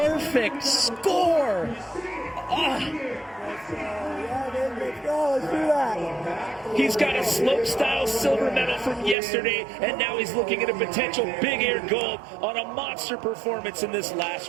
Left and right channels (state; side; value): drops out; left; at 9.2 s